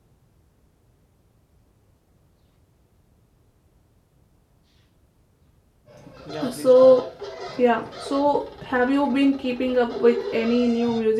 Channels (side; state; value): both; identical; correlation 1.00